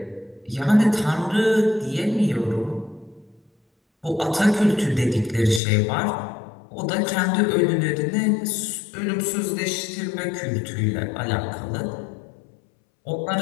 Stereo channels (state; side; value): drops out; right; at 5.6 s